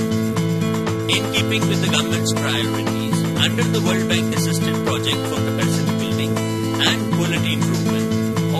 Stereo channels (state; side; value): identical; both; correlation 1.00